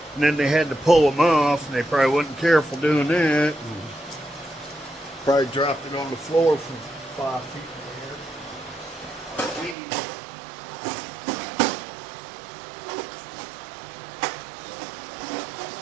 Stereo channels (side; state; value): left; drops out; at 9.8 s